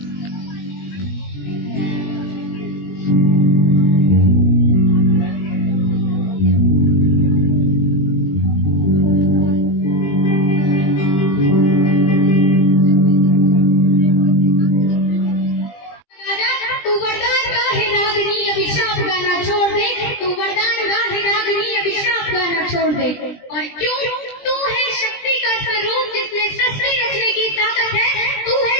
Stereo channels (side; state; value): right; late; 20 ms